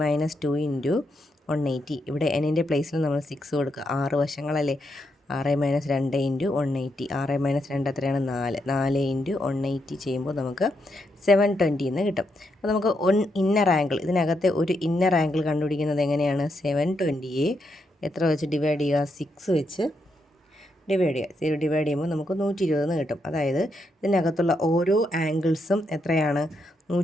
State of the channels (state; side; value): normal; both; correlation 0.81